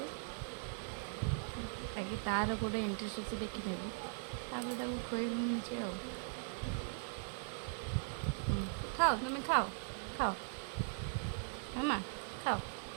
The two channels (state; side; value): silent; left; digital silence